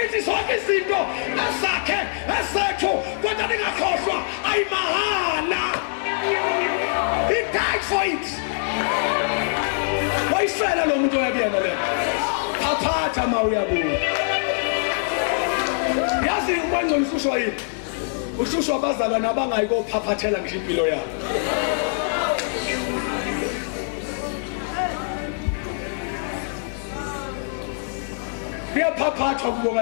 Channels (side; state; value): right; silent; digital silence